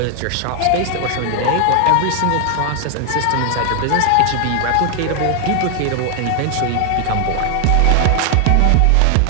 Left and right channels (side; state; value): both; different; correlation 0.00